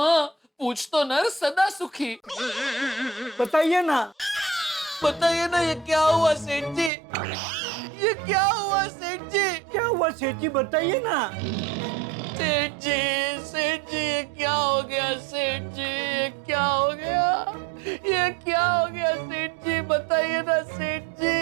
पूछ तो नर सदा सुखी। बताइए ना। बताइए ना, ये क्या हुआ सेठ जी? ये क्या हुआ सेठ जी? क्या हुआ सेठ जी, बताइए ना। सेठ जी, ये क्या हो गया सेठ जी? ये क्या हो गया? ये क्या हो गया सेठ जी? बताइए ना सेठ जी,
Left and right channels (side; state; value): left; drops out; at 6.9 s